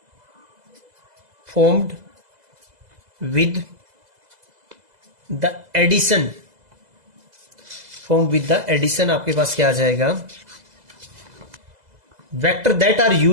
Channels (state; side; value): late; left; 2.0 ms